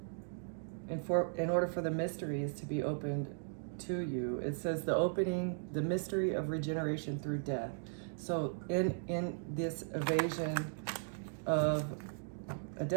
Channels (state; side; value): silent; left; digital silence